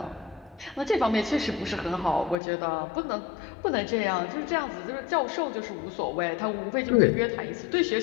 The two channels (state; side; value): drops out; right; at 2.4 s